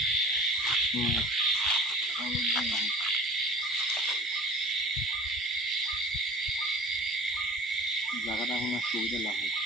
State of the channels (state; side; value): normal; both; correlation 0.42